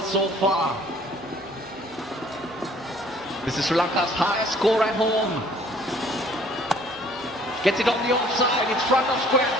so far. This is Sri Lanka's highest score at home. Gets it on the offside, it's front of square,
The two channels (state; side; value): normal; both; correlation 0.57